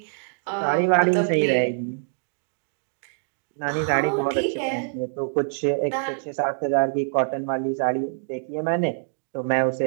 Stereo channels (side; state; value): left; silent; digital silence